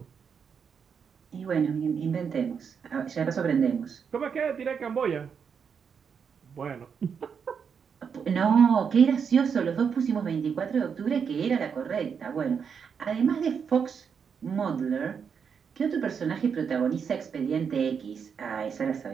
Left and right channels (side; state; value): left; quieter; 6.6 dB